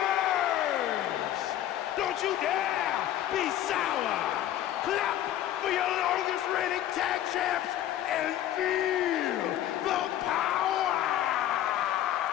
Don't you dare be sour! Clap for your longest reigning tag champs and feel the power!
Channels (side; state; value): right; quieter; 12.3 dB